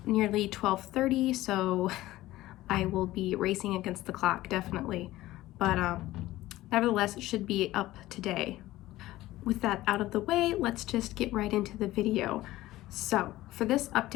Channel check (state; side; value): quieter; right; 16.5 dB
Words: nearly 12:30, so I will be racing against the clock, definitely. But nevertheless, it should be up today. With that out of the way, let's just get right into the video. So for this